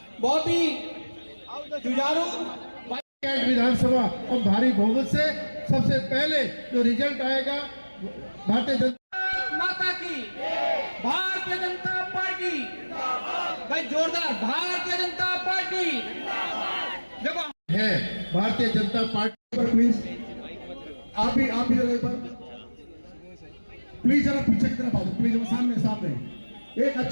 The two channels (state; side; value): inverted; both; correlation -1.00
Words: बहुत ही जुझारू विधानसभा और भारी बहुमत से सबसे पहले जो रिजल्ट आएगा भारतीय जनता माता की, भारतीय जनता पार्टी, भाई जोरदार भारतीय जनता पार्टी देखो है। भारतीय जनता पार्टी पर प्लीज आप भी जरा एक बार प्लीज जरा पीछे की तरफ आओ, प्लीज सामने एक